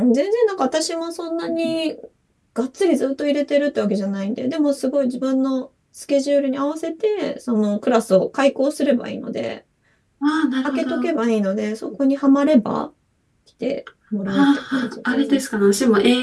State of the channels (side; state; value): both; identical; correlation 1.00